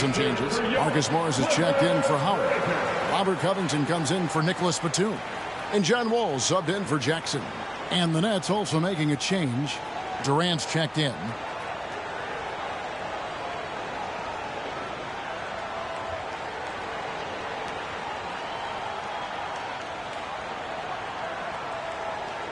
changes. Marcus Morris is checked in for Howard. Robert Covington comes in for Nicholas Batum. And John Wall subbed in for Jackson. And the Nets also making a change. Durant's checked in.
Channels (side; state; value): both; identical; correlation 1.00